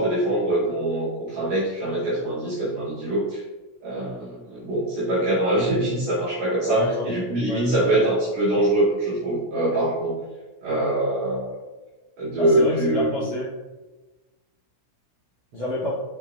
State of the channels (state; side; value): late; left; 17 ms